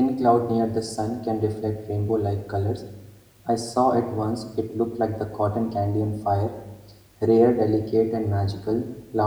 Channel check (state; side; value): identical; both; correlation 1.00